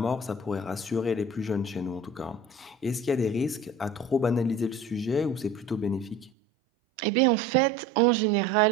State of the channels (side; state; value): left; drops out; at 6.3 s